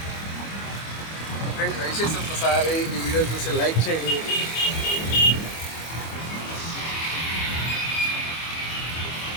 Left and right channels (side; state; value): right; late; 25 ms